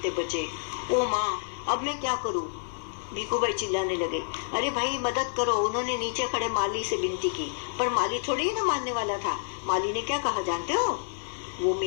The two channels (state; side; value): silent; right; digital silence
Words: बचे। ओ माँ, अब मैं क्या करूं? भिखू भाई चिल्लाने लगे। अरे भाई, मदद करो। उन्होंने नीचे खड़े माली से विनती की, पर माली थोड़ी ही ना मानने वाला था। माली ने क्या कहा जानते हो? वो